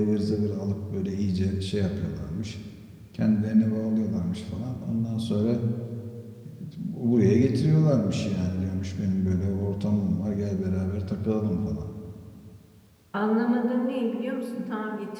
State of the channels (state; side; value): identical; both; correlation 1.00